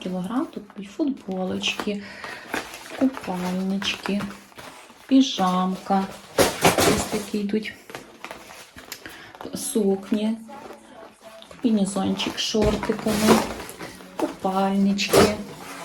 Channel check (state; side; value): identical; both; correlation 1.00